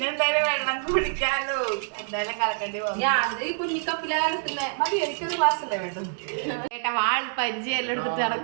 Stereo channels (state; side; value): silent; left; digital silence